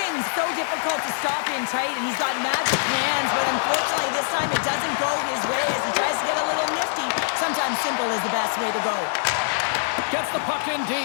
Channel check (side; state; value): right; silent; 63 dB below the other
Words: so difficult to stop in tight, and he's got magic hands, but unfortunately this time it doesn't go his way as he tries to get a little nifty. Sometimes simple is the best way to go. Gets the puck in